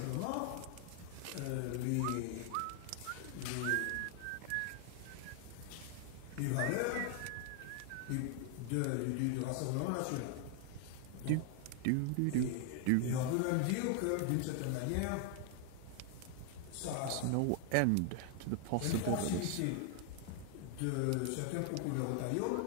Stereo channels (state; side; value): different; both; correlation 0.00